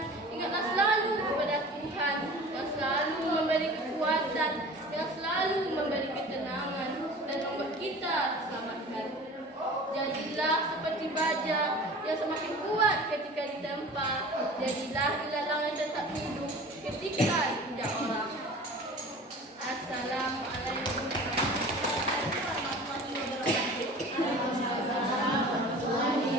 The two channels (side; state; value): both; normal; correlation 0.41